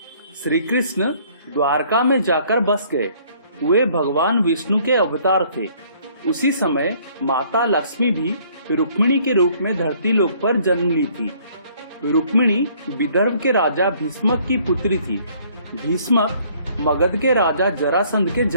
श्री कृष्ण द्वारका में जाकर बस गए। वे भगवान विष्णु के अवतार थे। उसी समय माता लक्ष्मी भी रुक्मिणी के रूप में धरती लोक पर जन्म ली थी। रुक्मिणी विदर्भ के राजा भीष्मक की पुत्री थी। भीष्मक मगध के राजा जरासंध के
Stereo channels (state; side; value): inverted; both; correlation -0.61